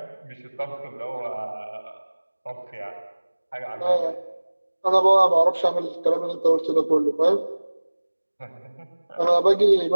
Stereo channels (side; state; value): both; inverted; correlation -1.00